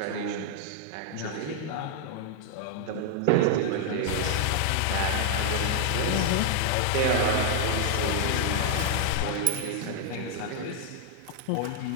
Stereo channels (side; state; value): both; different; correlation -0.01